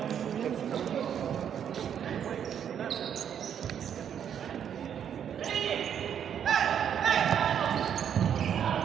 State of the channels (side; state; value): left; quieter; 8.7 dB